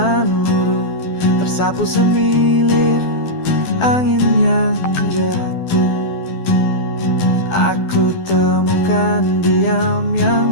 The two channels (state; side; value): late; right; 12 ms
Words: luruh, tersapu semilir angin yang jatuh. Aku temukan diam